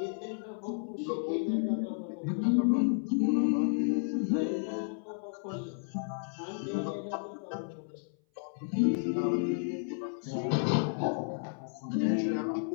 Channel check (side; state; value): right; silent; 56 dB below the other